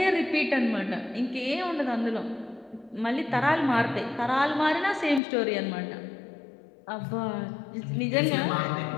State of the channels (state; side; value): drops out; right; at 5.2 s